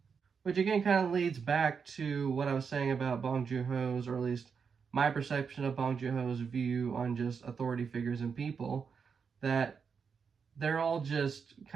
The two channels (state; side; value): quieter; left; 6.0 dB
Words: Which again kind of leads back to what I was saying about Bong Joon-ho's, or at least my perception of Bong Joon-ho's view on just authority figures and people, that they're all just